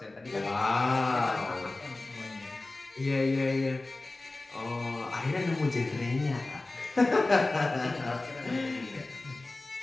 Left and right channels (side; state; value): right; quieter; 3.1 dB